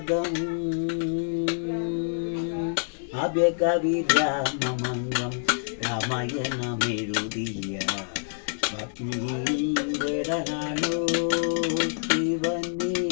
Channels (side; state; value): right; silent; digital silence